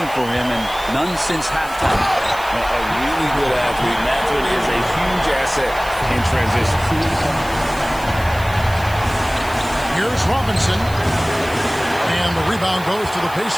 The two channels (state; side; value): noise; right; hiss, 18 dB below the sound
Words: for him, and none since halftime. A really good athlete. Mathurin is a huge asset in transition. Here's Robinson. And the rebound goes to the